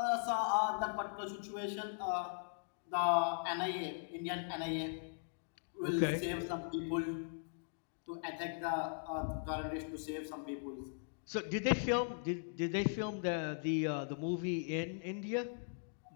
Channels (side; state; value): right; silent; digital silence